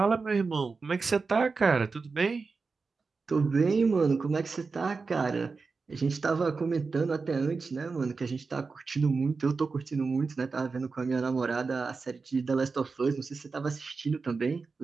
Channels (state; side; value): quieter; left; 4.5 dB